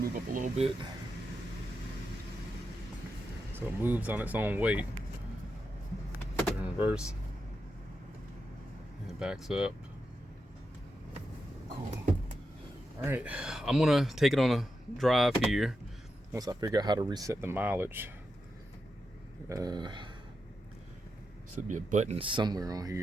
up a little bit. So it moves on its own weight. Put it in reverse. And it backs up. Cool. All right, I'm gonna take it on a drive here once I figure out how to reset the mileage. Should be a button somewhere on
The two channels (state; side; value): normal; both; correlation 0.87